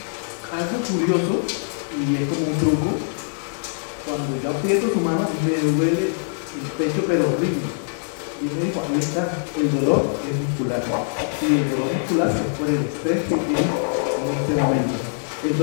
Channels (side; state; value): right; silent; digital silence